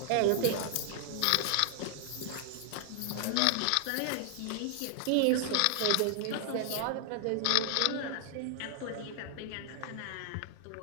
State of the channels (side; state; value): both; different; correlation -0.01